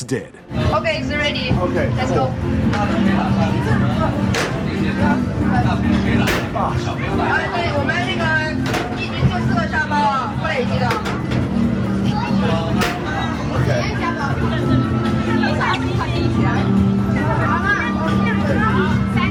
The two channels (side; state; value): both; identical; correlation 1.00